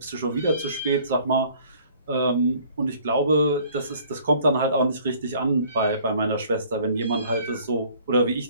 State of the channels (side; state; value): both; inverted; correlation -0.56